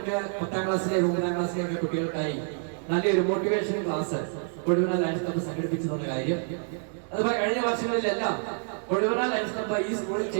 10ാം ക്ലാസ്സിലെ 9ാം ക്ലാസ്സിലെ ഒക്കെ കുട്ടികൾക്കായി നല്ലൊരു മോട്ടിവേഷൻ ക്ലാസ് കൊഴുവന ലയൺസ് ക്ലബ്ബ് സംഘടിപ്പിച്ചെന്ന കാര്യം. അതുപോലെ കഴിഞ്ഞ വർഷങ്ങളിലെല്ലാം കൊഴുവന ലയൺസ് ക്ലബ്ബ് ഈ സ്കൂളിൽ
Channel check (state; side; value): silent; left; 60 dB below the other